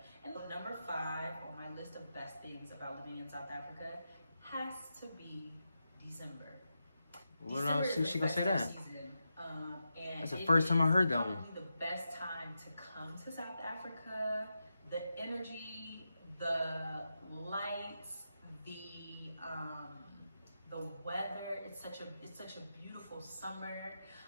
And number 5 on my list of best things about living in South Africa has to be December. What else? She gonna say that? Season, and that's the first time I heard that one. The best time to come to South Africa. The energy, the lights, the weather. It's such a beautiful summer.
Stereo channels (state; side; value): inverted; both; correlation -0.88